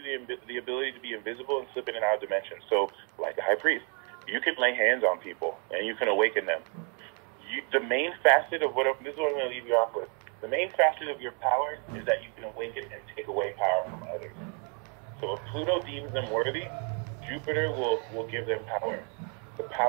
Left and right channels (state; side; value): quieter; left; 39.0 dB